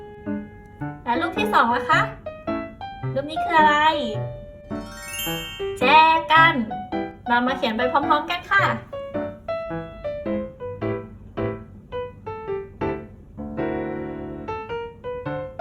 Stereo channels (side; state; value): both; identical; correlation 1.00